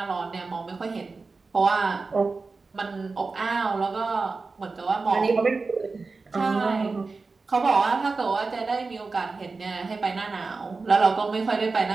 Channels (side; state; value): left; quieter; 4.0 dB